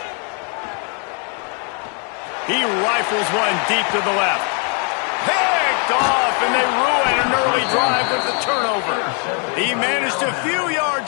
He rifles one deep to the left. Picked off, and they ruin an early drive with the turnover. He managed a few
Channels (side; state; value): right; quieter; 39.5 dB